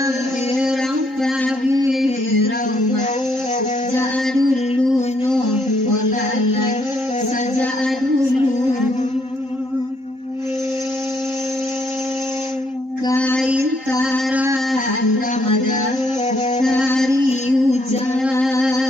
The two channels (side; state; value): left; late; 3.8 ms